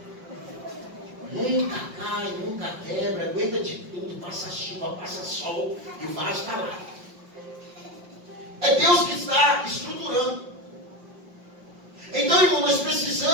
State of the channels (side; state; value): left; late; 5.6 ms